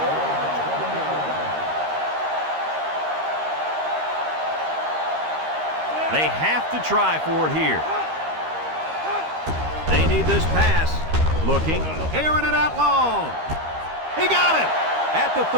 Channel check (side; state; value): left; late; 13 ms